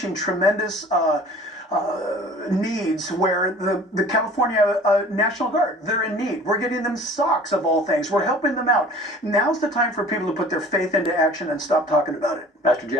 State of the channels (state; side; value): normal; both; correlation 0.46